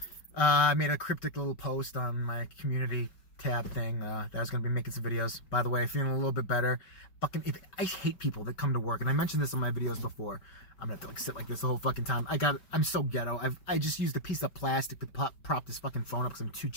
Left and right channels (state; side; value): late; right; 5.1 ms